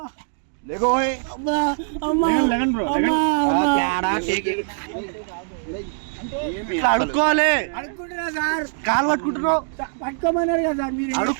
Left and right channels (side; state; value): left; silent; digital silence